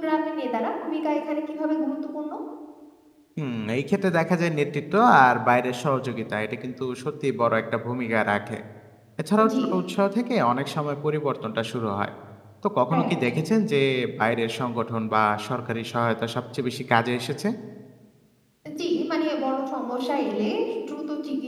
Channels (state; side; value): identical; both; correlation 1.00